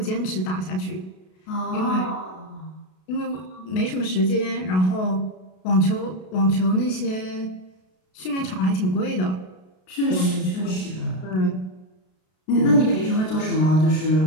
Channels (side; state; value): right; late; 32 ms